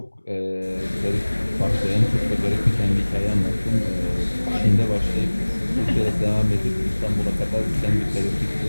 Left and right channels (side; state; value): both; inverted; correlation -1.00